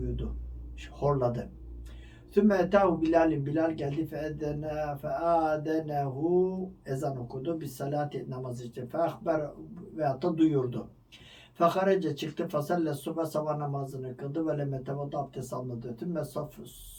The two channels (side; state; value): both; identical; correlation 1.00